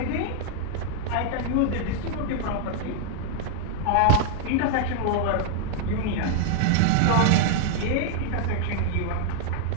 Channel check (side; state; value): both; different; correlation 0.00